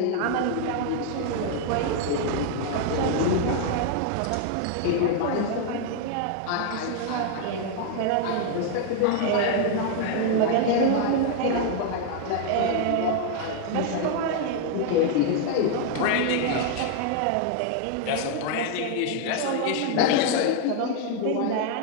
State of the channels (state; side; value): different; both; correlation 0.00